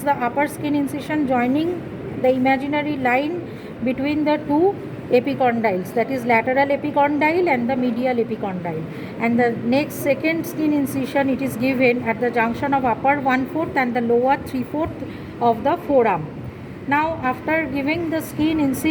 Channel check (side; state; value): both; identical; correlation 1.00